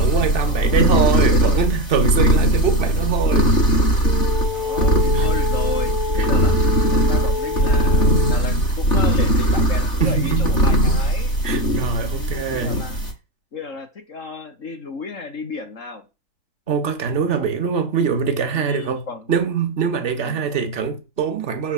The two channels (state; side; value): late; right; 3.4 ms